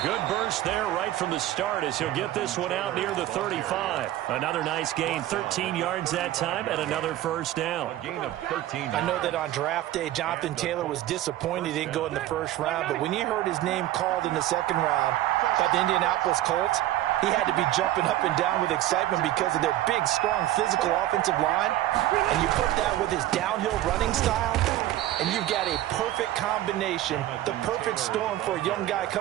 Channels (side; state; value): left; quieter; 14.3 dB